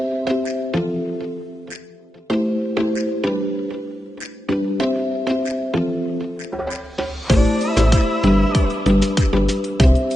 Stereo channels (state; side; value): normal; both; correlation 0.90